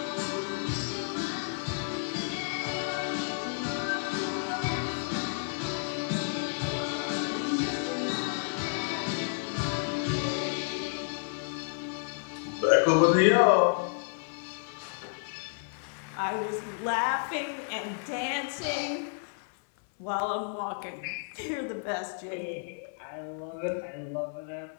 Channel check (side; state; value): right; silent; 57 dB below the other